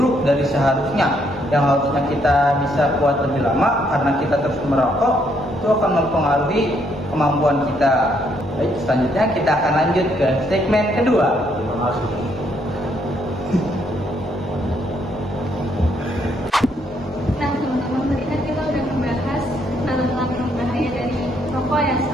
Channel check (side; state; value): both; normal; correlation 0.72